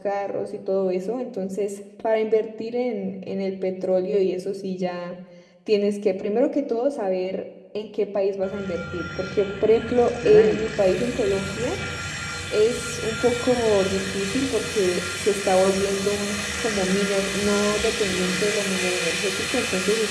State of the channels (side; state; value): both; identical; correlation 1.00